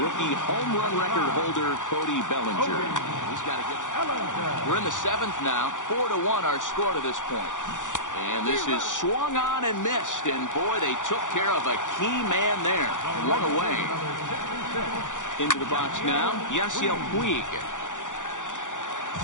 home run record holder, Cody Bellinger. He's got to get. We're in the 7th now. 4-1 our score to this point. And this is swung on and missed. And boy, they took care of a key man there. 1 away. Into the box now, Yasiel Puig.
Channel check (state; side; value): late; right; 0.86 ms